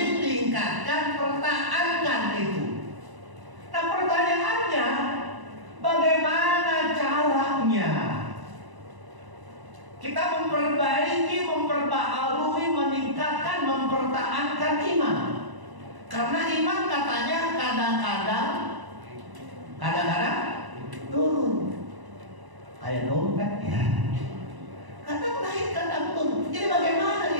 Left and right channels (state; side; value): late; left; 1.0 ms